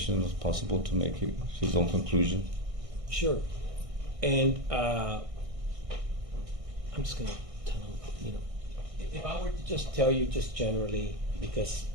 as possible to make his own conclusion. Sure. And I'm just gonna tell him, if I were to just tell you just generally, because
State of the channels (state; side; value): late; left; 1.6 ms